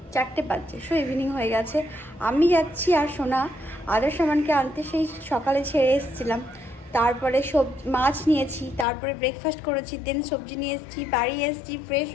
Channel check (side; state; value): right; drops out; at 8.8 s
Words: 4টে বাজছে, সো ইভিনিং হয়ে গেছে। আমি যাচ্ছি আর সোনা আদার সামানকে আনতে। সেই সকালে ছেড়ে এসেছিলাম, তারপরে মাছ নিয়েছি, তারপরে ব্রেকফাস্ট করেছি, দেন সবজি নিয়ে এসেছি, বাড়ি এসেছি, ফ্রেশ